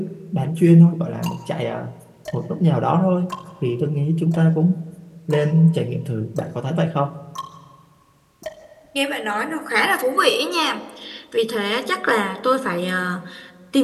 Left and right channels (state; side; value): identical; both; correlation 1.00